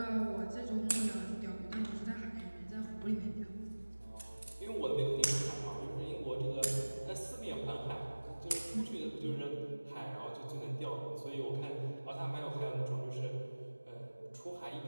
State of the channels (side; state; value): both; inverted; correlation -1.00